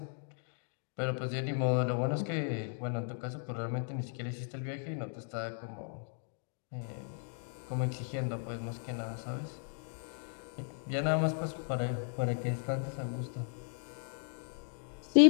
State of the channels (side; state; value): right; silent; 54 dB below the other